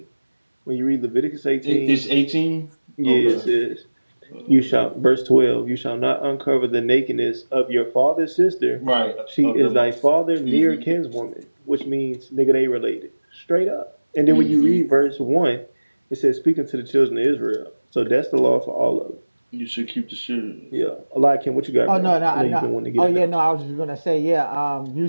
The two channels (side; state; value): both; inverted; correlation -1.00